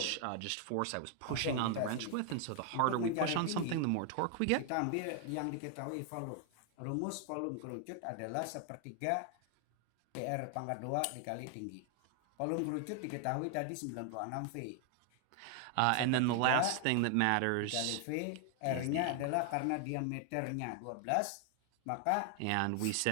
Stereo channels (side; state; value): both; different; correlation 0.00